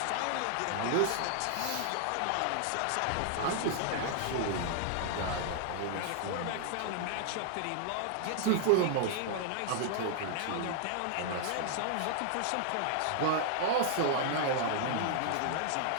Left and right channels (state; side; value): different; both; correlation -0.01